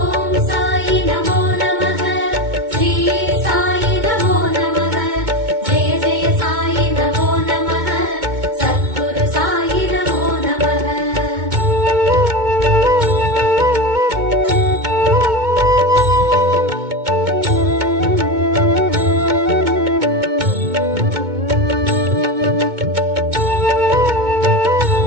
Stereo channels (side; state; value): left; late; 2.2 ms